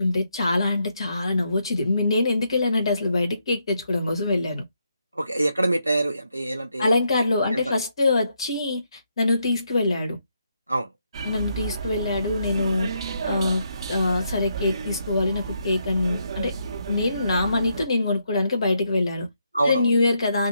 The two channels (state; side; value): inverted; both; correlation -0.78